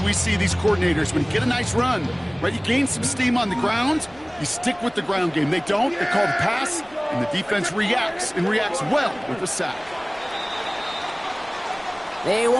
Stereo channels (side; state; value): left; noise; rumble, 27 dB below the sound